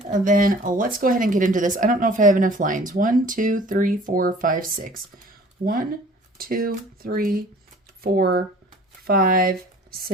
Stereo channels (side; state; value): both; normal; correlation 0.49